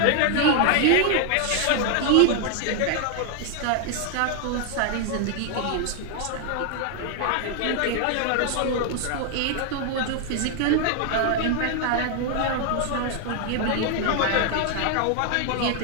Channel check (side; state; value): both; different; correlation 0.00